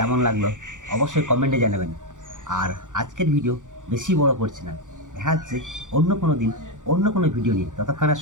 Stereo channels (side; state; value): left; late; 0.86 ms